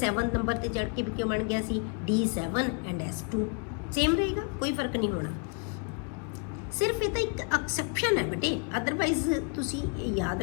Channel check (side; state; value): right; quieter; 34.7 dB